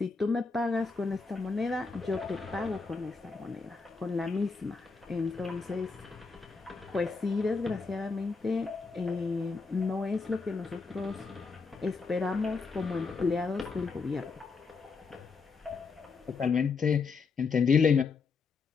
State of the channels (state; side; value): quieter; right; 4.7 dB